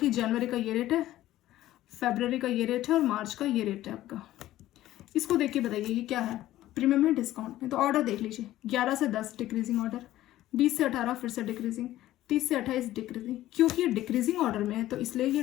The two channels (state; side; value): quieter; right; 14.6 dB